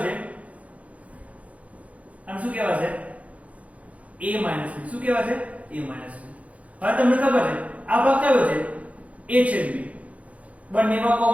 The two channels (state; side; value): late; left; 0.067 ms